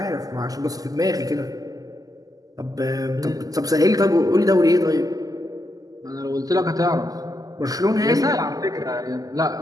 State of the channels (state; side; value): late; left; 0.17 ms